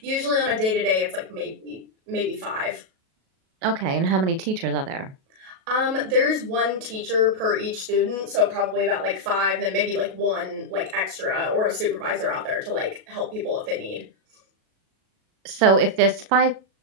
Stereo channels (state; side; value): late; left; 37 ms